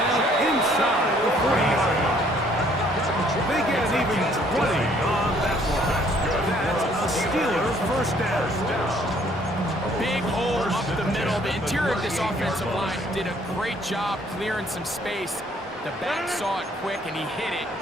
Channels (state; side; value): normal; both; correlation 0.62